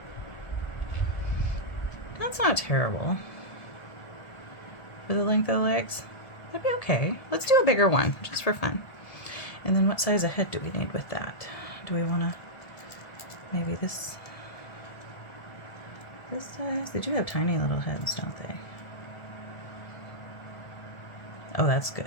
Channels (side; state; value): right; late; 1.7 ms